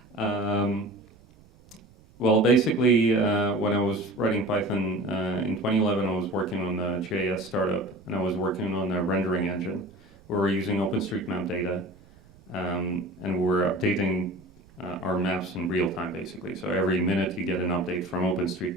Well, basically, when I was writing Python in 2011, I was working on a JS startup, and I was working on a rendering engine where we're using OpenStreetMap data, and we're updating our maps in real time, basically. So every minute you get an update from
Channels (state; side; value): noise; right; rumble, 26 dB below the sound